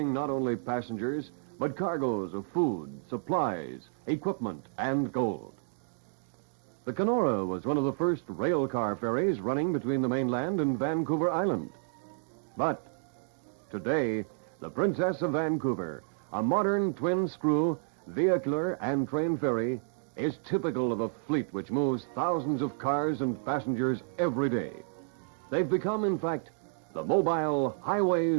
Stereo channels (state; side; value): silent; left; digital silence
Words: not only passengers, but cargoes of food, supplies, equipment, and gold. The Kenora was one of the first rail car ferries running between the mainland and Vancouver Island. But today, the Princess of Vancouver, a modern twin-screw, vehicular and train ferry, is typical of a fleet which moves thousands of cars and passengers every day. They've become, in fact, the mobile